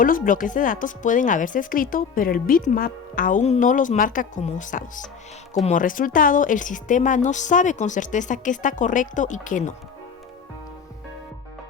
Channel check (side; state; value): right; quieter; 6.4 dB